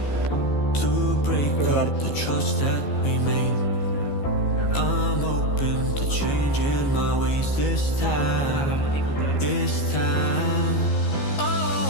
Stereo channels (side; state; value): right; late; 14 ms